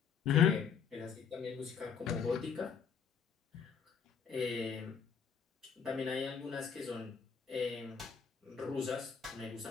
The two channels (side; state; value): right; quieter; 6.7 dB